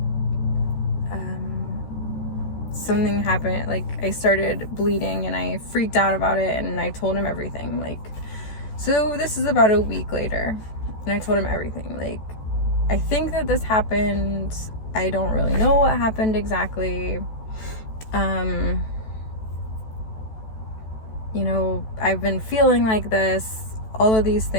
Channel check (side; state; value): right; late; 14 ms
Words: something happened. Like, I started bleeding, and I freaked out about it, and I told him everything. Like, so this is about a week later, and I told him everything. Like, I think that this happened. I don't really know what happened exactly. You know, I've been feeling like this, all of these